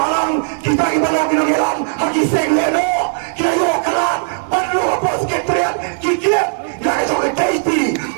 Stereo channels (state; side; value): silent; left; 56 dB below the other